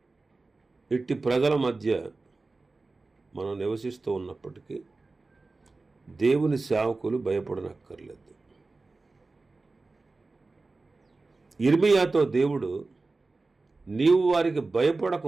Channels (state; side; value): quieter; left; 3.6 dB